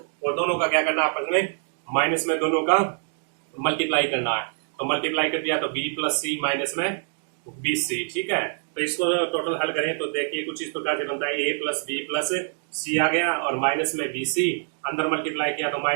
और दोनों का क्या करना है आपस में, माइनस में दोनों का मल्टीप्लाई करना है। तो मल्टीप्लाई कर दिया तो बी प्लस सी माइनस में बी सी। ठीक है। तो इसको टोटल हल करें तो देखिए कुछ इस प्रकार से बनता है, ए प्लस बी प्लस सी आ गया और माइनस में बी सी, अंदर मल्टीप्लाई किया तो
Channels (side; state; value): left; silent; 59 dB below the other